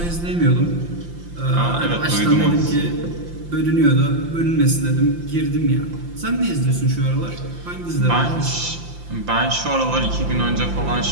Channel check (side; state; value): left; late; 5.8 ms